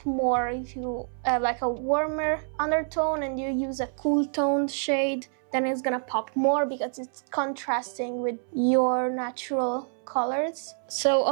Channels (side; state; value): left; silent; 60 dB below the other